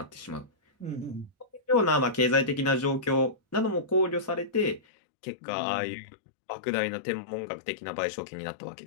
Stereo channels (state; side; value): drops out; right; at 4.8 s